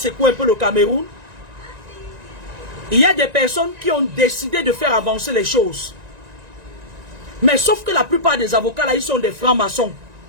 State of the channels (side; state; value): left; late; 1.9 ms